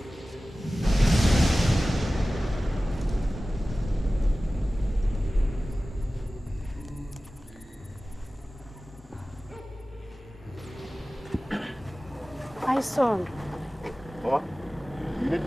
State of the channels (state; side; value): normal; both; correlation 0.97